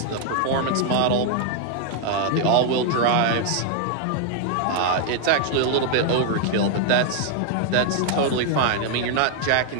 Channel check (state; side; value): different; both; correlation 0.00